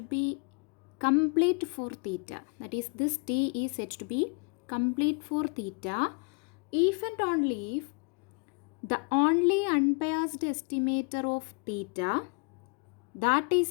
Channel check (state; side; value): quieter; right; 37.4 dB